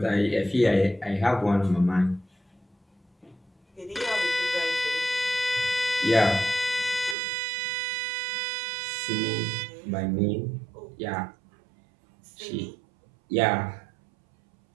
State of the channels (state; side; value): drops out; left; at 7.2 s